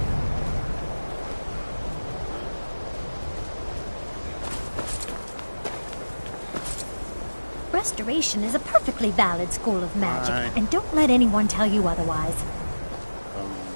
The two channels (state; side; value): inverted; both; correlation -1.00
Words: Restoration is a perfectly valid school of magic, Right. and don't let anyone tell you otherwise.